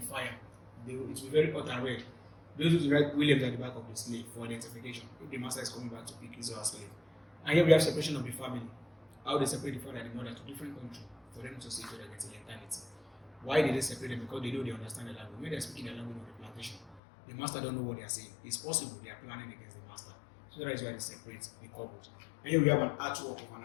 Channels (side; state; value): right; drops out; at 17.0 s